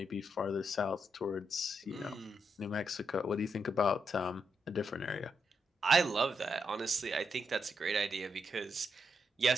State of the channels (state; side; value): normal; both; correlation 0.82